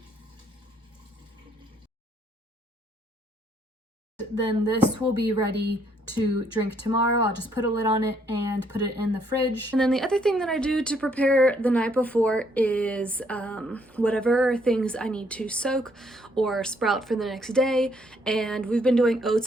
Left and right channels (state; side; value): normal; both; correlation 0.68